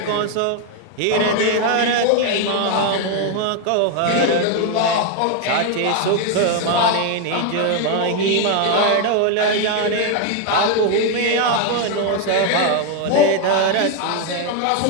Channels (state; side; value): different; both; correlation 0.01